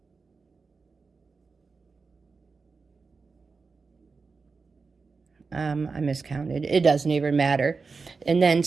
I miscounted. It doesn't even matter. And then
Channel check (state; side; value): quieter; left; 4.5 dB